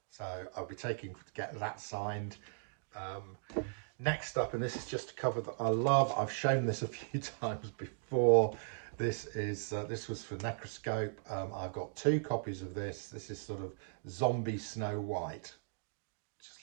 so I'll be taking to get that signed. Next up, and this is just a cover that I love. I've shown this a few times before. This was for Necroscope. I've got 2 copies of this. This is sort of zombie Snow White. Just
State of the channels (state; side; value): silent; left; digital silence